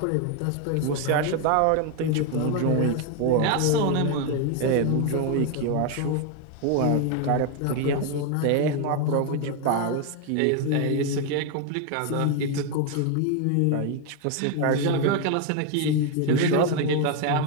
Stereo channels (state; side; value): different; both; correlation 0.01